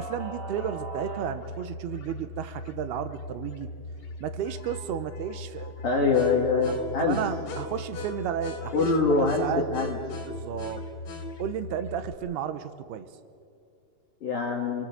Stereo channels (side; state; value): right; late; 2.8 ms